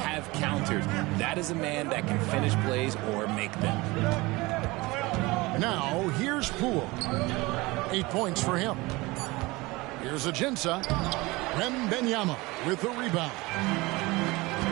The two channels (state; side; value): quieter; left; 22.3 dB